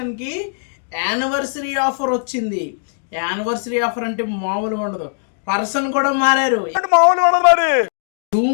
యానివర్సరీ ఆఫర్ వచ్చింది. యానివర్సరీ ఆఫర్ అంటే మామూలుగా ఉండదు. పర్సన్ కూడా మారారు.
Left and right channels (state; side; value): silent; right; digital silence